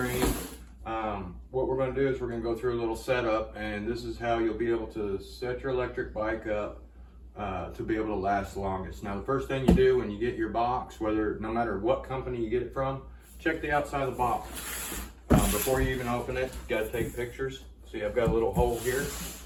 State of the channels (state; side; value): identical; both; correlation 1.00